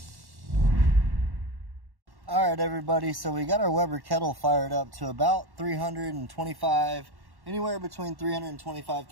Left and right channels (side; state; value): left; late; 1.1 ms